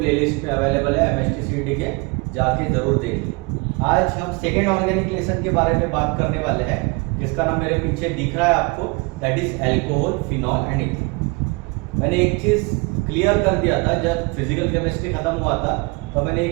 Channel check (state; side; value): quieter; left; 28.5 dB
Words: में अवेलेबल है एमएसटीसीटी के, जाके जरूर देखिए। आज हम सेकेंड ऑर्गेनिक लेसन के बारे में बात करने वाले हैं, जिसका नाम मेरे पीछे दिख रहा है आपको, that is alcohol, phenol and ethane. मैंने एक चीज क्लियर कर दिया था जब फिजिकल केमिस्ट्री खत्म हुआ था, तो मैंने